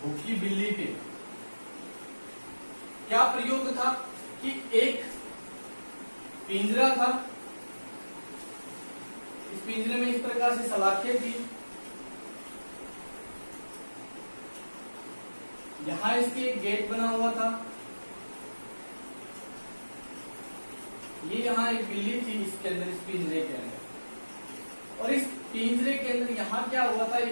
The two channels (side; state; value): both; inverted; correlation -1.00